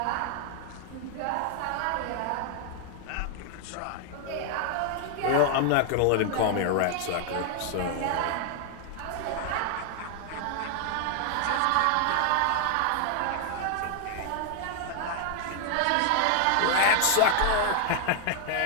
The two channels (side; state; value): both; different; correlation 0.00